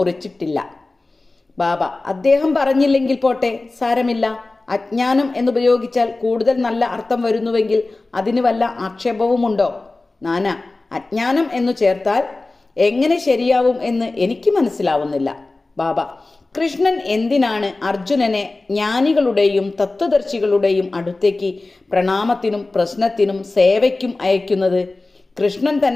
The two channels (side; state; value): right; quieter; 3.2 dB